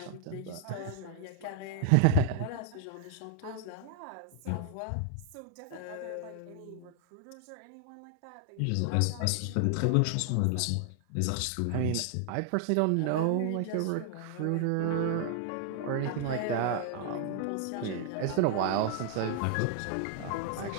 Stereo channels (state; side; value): different; both; correlation 0.00